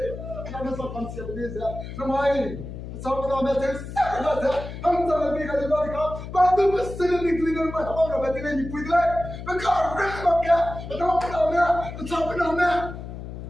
Kita nak konsep ni saya. Ramai. Sama dengan macam sana, हम सब भी कल बात का बात तो बस से निकली गई मैं हमारा बेटे ने नहीं पूछ रहा मैं कहाँ रख रहा क्या बताओ बताओ मैं बताओ बताओ मैं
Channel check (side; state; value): left; noise; hum, 10 dB below the sound